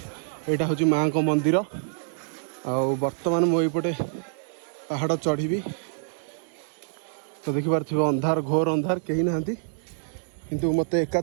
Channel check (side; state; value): left; silent; 61 dB below the other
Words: एटा होची मां को मंदिर आउ वर्तमान मो एपटे पहाड़ चढ़ी तो देखि पारथिबे अंधार घोर अंधार कहीं नांती किंतु मते एका